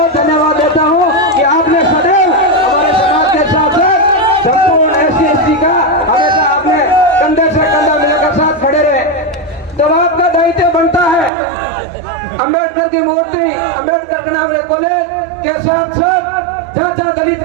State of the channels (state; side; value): drops out; left; at 11.3 s